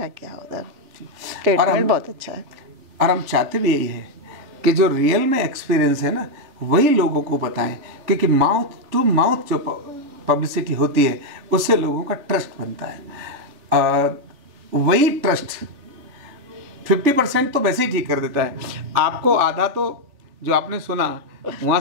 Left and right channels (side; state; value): left; late; 3.5 ms